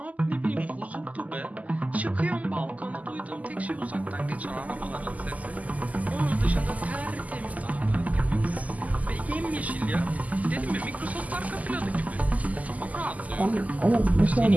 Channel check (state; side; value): late; left; 0.075 ms